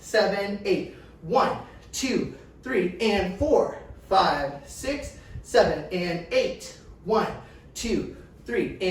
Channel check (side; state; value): both; identical; correlation 1.00